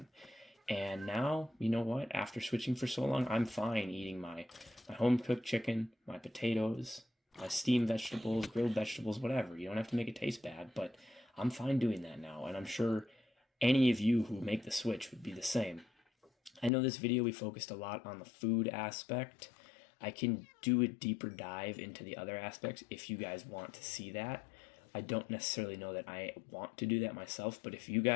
And now, you know what? After switching for so long, I'm fine eating my home-cooked chicken, my potatoes, my steamed vegetables, grilled vegetables, whatever. You don't have to make it taste bad, but I'm fine doing that now. And I'm sure any of you who make the switch would be the same. I know this video we focused a lot on the food aspect. I can do a deeper dive into the other aspects if you guys want to see that. I don't necessarily know that I want to do that myself, but if you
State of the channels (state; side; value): drops out; right; at 16.7 s